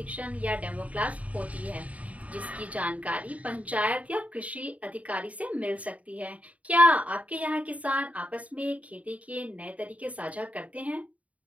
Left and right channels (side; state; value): left; late; 0.068 ms